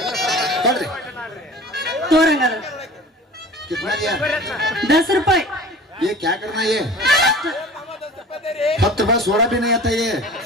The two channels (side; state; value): both; normal; correlation 0.41